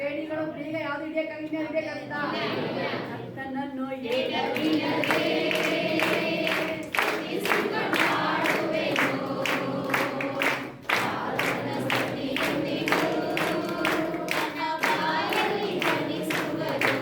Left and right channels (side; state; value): both; identical; correlation 1.00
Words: ಬೇಡಿಗಳು ಬೇಗ ಯಾವ್ದು ಹಿಡಿಯಕ್ಕಾಗಿಲ್ಲ. ನನ್ನನ್ನು